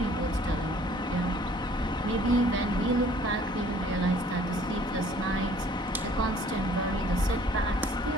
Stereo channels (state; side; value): normal; both; correlation 0.55